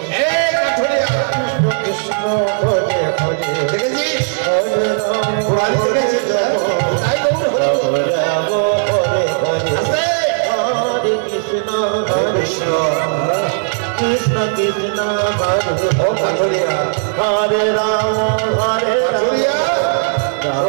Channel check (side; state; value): left; silent; digital silence